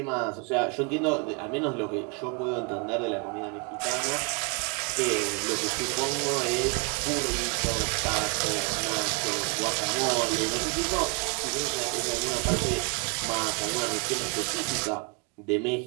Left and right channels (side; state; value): left; quieter; 35.0 dB